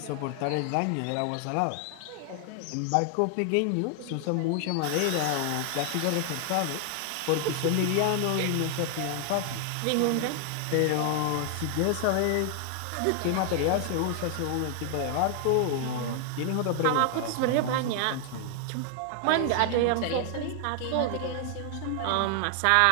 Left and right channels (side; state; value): both; different; correlation 0.00